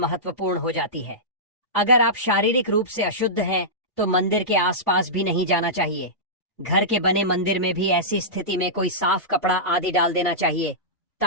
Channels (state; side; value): normal; both; correlation -0.16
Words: हो जाती है। अगर आप शारीरिक रूप से अशुद्ध हैं तो मंदिर के आसपास भी नहीं जाना चाहिए। घर के बने मंदिर में भी ऐसी स्थिति में कोई साफ कपड़ा आदि डाल देना चाहिए